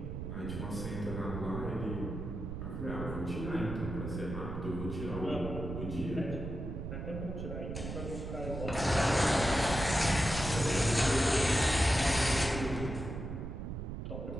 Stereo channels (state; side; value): noise; right; rumble, 5 dB below the sound